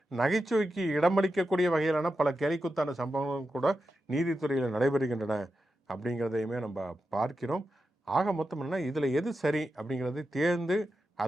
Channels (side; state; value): both; normal; correlation 0.89